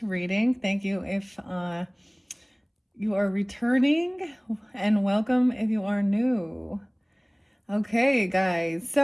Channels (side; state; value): both; identical; correlation 1.00